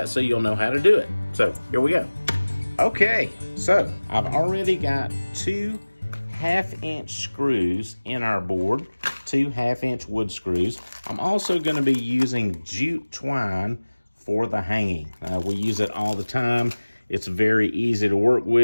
so you'll know how to do it. So here we go. Okay, so I've already got 2 1/2-inch screws in our board, 2 1/2-inch wood screws. I'm also going to be using jute twine for the hanging. We use it all the time. It's very easy to work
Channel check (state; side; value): inverted; both; correlation -1.00